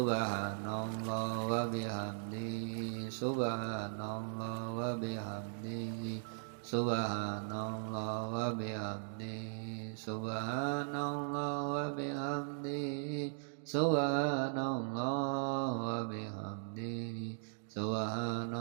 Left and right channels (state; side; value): silent; left; digital silence